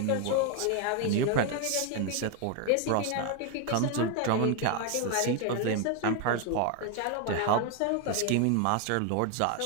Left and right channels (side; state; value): both; different; correlation 0.00